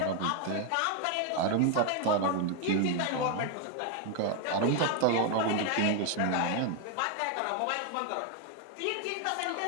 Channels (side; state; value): both; different; correlation 0.01